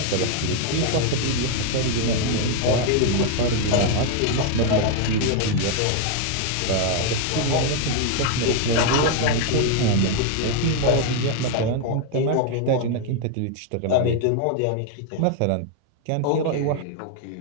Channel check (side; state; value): both; different; correlation 0.01